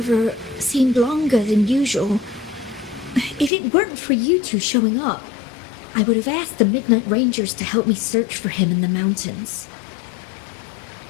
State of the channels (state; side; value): drops out; right; at 3.5 s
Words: seemed longer than usual. If it weren't for you two showing up, I would have asked the Midnight Rangers to help me search for him in the mountains.